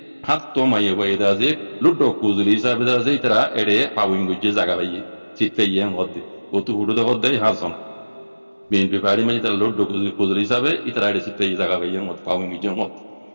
हाथ तो माये वायदा से लुटो कुजली साबिदा से इतना एडे पाविंग गुजे जगह भाई चित्ते ये होते वो तो हुडो तो होते हासन BNP पार्टी में जितना लोड कुजली हिसाब है इतना ऐसे चित्ते ये जगह भाई मत पाऊंगी जो मत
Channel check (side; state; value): both; inverted; correlation -1.00